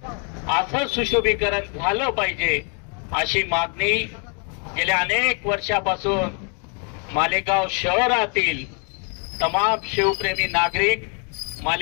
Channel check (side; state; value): right; quieter; 39.8 dB